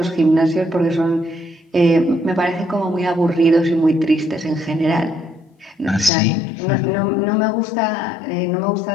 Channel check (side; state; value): right; drops out; at 6.1 s